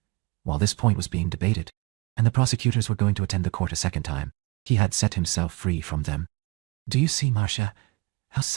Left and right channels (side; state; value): left; quieter; 24.8 dB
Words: While this point was being debated, and the prosecutors were going to attend the court a second time, he had set himself free from them. Do you see, Marcia, how